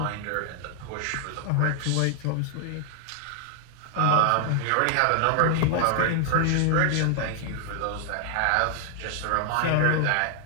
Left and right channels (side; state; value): both; different; correlation 0.00